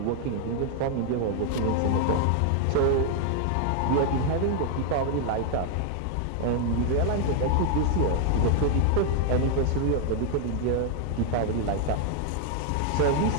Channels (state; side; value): different; both; correlation 0.00